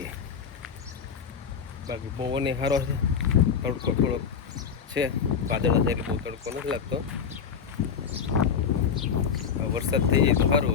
બાકી પવન સારો છે, તડકો થોડો છે. વાદળા થાય એટલે બહુ તડકો નથી લાગતો. વરસાદ થઈ જાય તો સારું.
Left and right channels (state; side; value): quieter; right; 6.8 dB